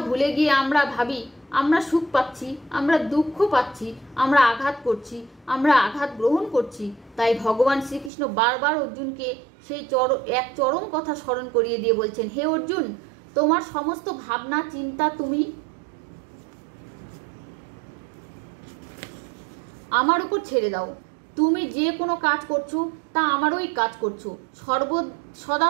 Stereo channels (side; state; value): left; drops out; at 8.1 s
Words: ভুলে গিয়ে আমরা ভাবি আমরা সুখ পাচ্ছি, আমরা দুঃখ পাচ্ছি, আমরা আঘাত করছি, আমরা আঘাত গ্রহণ করছি। তাই ভগবান শ্রীকৃষ্ণ বারবার অর্জুনকে সেই এক চরম কথা স্মরণ করিয়ে দিয়ে বলছেন, হে অর্জুন, তোমার সমস্ত ভাবনা চিন্তা তুমি আমার উপর ছেড়ে দাও। তুমি যে কোনো কাজ করছো তা আমারই কাজ করছো। সদা